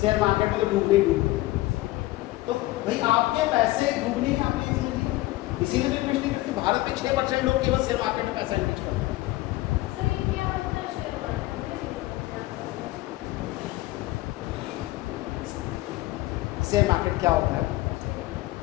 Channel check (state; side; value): quieter; right; 18.0 dB